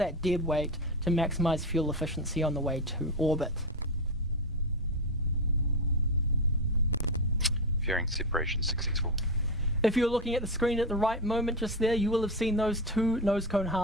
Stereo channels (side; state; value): both; normal; correlation 0.15